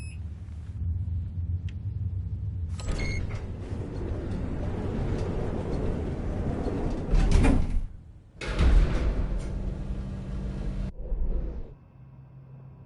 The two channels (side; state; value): both; identical; correlation 1.00